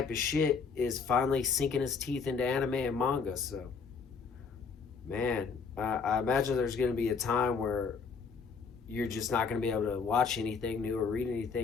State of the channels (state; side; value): quieter; right; 5.4 dB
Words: of shit is finally sinking its teeth into anime and manga. So, man, I imagine there's going to be a time where you're just not going to be able to watch anything new or read